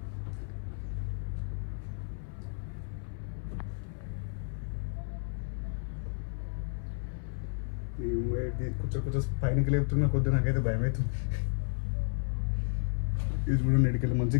కొంచెం పైనకి లేపుతున్న కొద్ది నాకైతే భయం అవుతుంది. ఇది చూడండి, ఎడికెళ్ళి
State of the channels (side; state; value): right; silent; 56 dB below the other